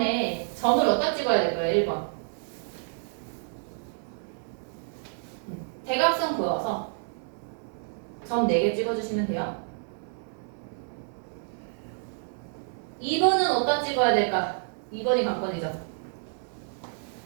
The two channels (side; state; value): left; silent; 59 dB below the other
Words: 점을 어디다 찍어야 될까요? 1번. 대각선 그어서 점 4개 찍어주시면 돼요. 2번은 어디다 찍어야 될까? 2번이 관건이죠.